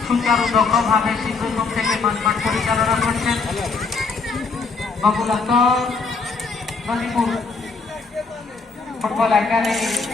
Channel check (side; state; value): right; quieter; 4.5 dB